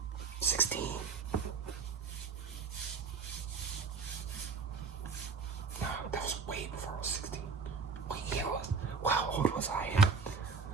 16. No, that was way before I was 16. Wait, yeah, how old was I?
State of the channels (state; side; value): quieter; left; 5.0 dB